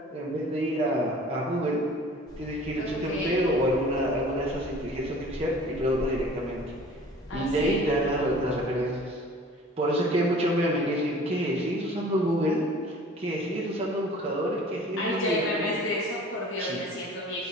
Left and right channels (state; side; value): normal; both; correlation 0.47